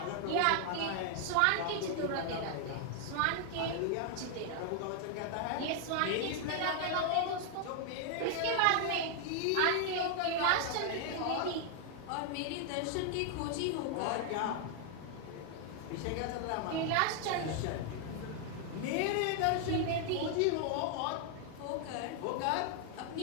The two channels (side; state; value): both; different; correlation 0.00